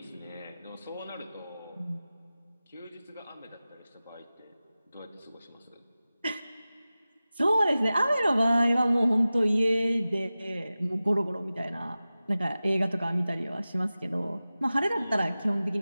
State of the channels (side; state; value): both; inverted; correlation -0.96